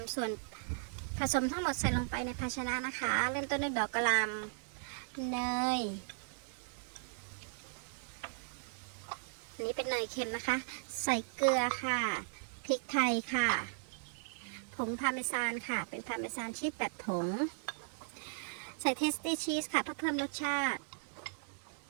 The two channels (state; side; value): silent; left; digital silence